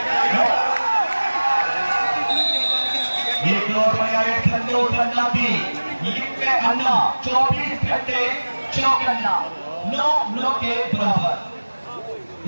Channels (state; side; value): inverted; both; correlation -1.00